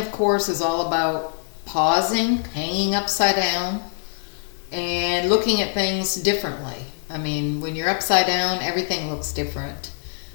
course, is all about pausing, hanging upside down, and looking at things differently. I mean, when you're upside down, everything looks different.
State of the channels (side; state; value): right; silent; digital silence